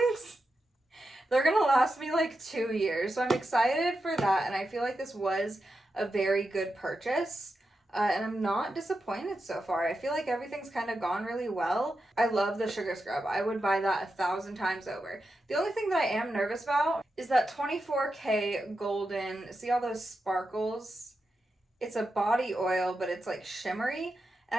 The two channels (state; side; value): normal; both; correlation 0.88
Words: They're gonna last me like 2 years, so I'm excited for that, and I feel like this was a very good purchase. And I'm not disappointed so far. I feel like everything's kind of gone really well. I love the sugar scrub. I would buy that 1,000 times over. The only thing that I am nervous about is that 24K golden, see all those sparkles? It's a body oil, but it's like shimmery.